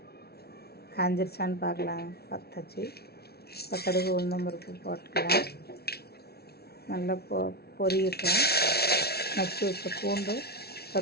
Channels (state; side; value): late; right; 0.46 ms